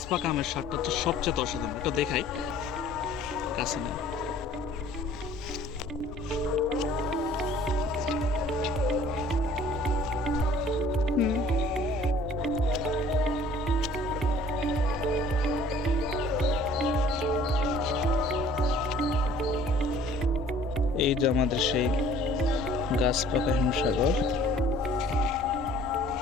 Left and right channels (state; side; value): normal; both; correlation 0.53